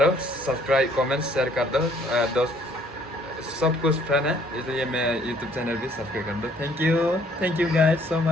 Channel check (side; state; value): both; normal; correlation 0.62